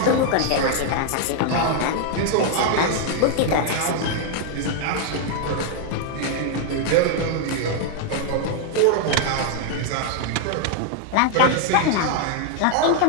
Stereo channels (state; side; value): different; both; correlation 0.00